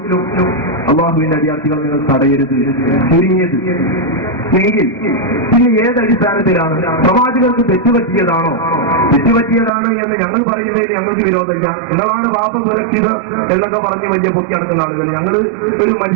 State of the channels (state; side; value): drops out; left; at 9.7 s